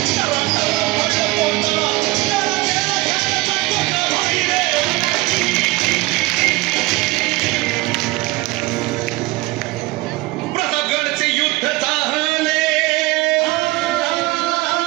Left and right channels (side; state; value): left; quieter; 21.3 dB